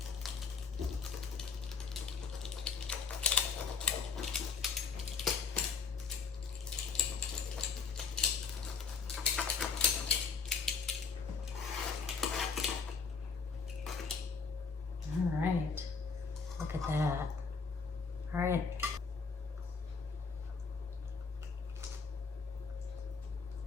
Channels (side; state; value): right; quieter; 5.2 dB